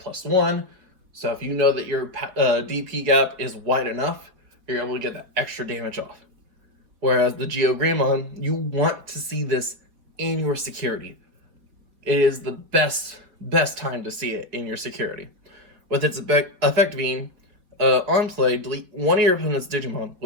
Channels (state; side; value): late; left; 4.9 ms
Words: +1, so if you know that your DP gap is wide enough, you're able to get that extra damage off. Whereas the GeoGreymon, you want to see this in your security. It is the best time to see it in your security. With its effect being, on play, delete one of your opponent's Digimon